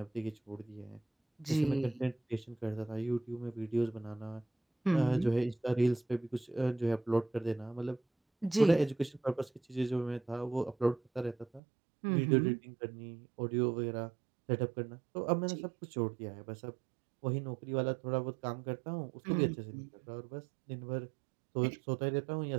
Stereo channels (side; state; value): left; drops out; at 11.6 s